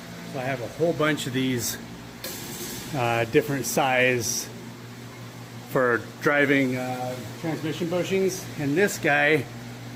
So I have a whole bunch of these different size for driving transmission bushings, and this guy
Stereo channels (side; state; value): both; identical; correlation 1.00